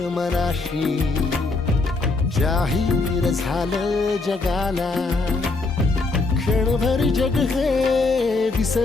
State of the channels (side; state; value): right; quieter; 3.6 dB